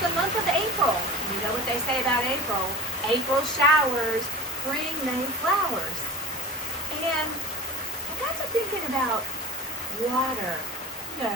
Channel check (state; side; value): normal; both; correlation 0.36